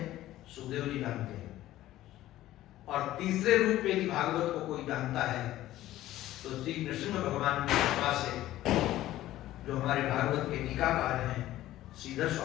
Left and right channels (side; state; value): right; quieter; 14.7 dB